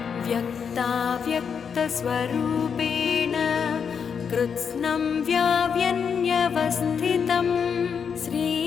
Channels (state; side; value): quieter; right; 6.7 dB